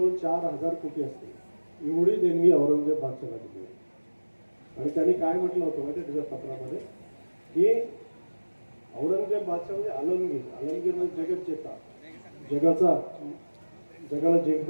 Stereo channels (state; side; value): inverted; both; correlation -1.00